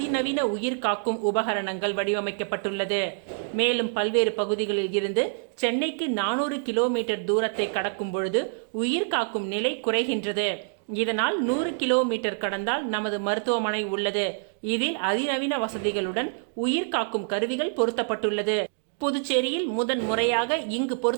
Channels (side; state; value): left; silent; digital silence